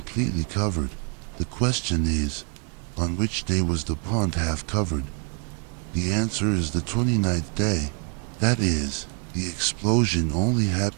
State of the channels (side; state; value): left; quieter; 37.6 dB